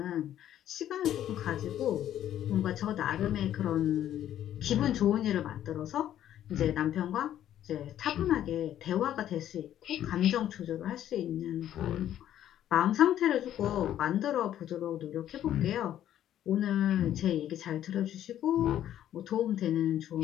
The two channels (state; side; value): quieter; right; 11.4 dB